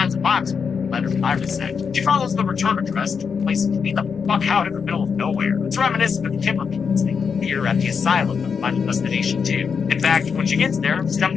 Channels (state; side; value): quieter; right; 6.1 dB